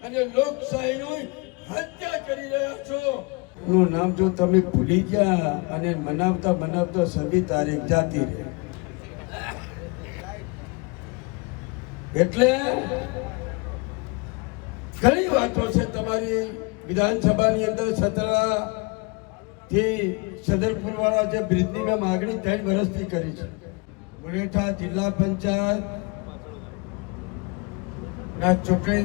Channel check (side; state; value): right; quieter; 29.0 dB